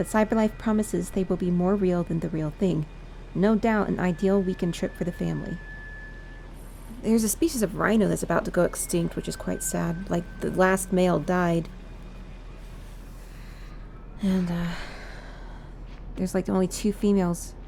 CyberLife promises they will be more real than the real thing. No doubt an ideal weekend trip for the family. There's a species of rhino that's about to go extinct, which is quite sad. Like, the last male died. And, there's like only 2 females.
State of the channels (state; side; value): identical; both; correlation 1.00